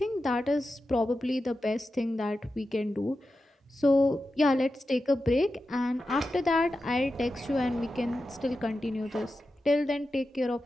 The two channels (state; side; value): normal; both; correlation 0.91